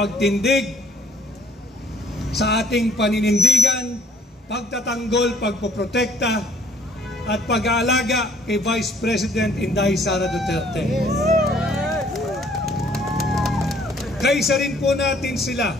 sa ating paninindigan, pagtatanggol, pagpoprotekta at pag-aalaga kay Vice President Inday Sara Duterte. Kaisa rin po natin sila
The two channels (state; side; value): normal; both; correlation 0.60